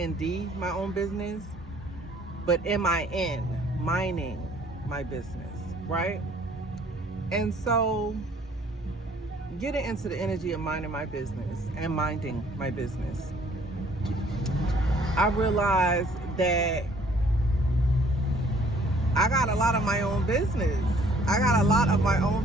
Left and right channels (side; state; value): both; normal; correlation 0.59